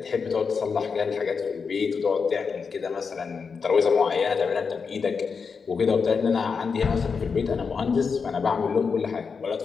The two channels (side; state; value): right; quieter; 5.5 dB